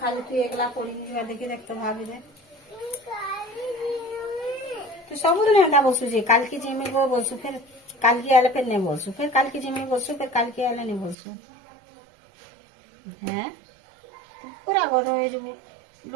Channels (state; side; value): drops out; left; at 11.2 s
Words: खाली तू एकला पढ़ी नहीं जा देखि देख तो भाभी दे तू सब दिन एंदा बोलसु जे काल की जेमे को बोलसु फिर काल की आले फिर नहीं बोलसु फिर काल की जेमे बोलसु फिर काल की आले नहीं बोलसु हैं तू पूरा गध होय जबु